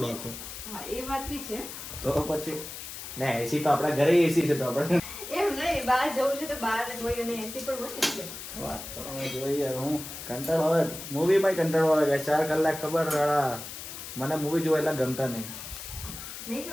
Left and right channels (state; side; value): noise; left; hiss, 10 dB below the sound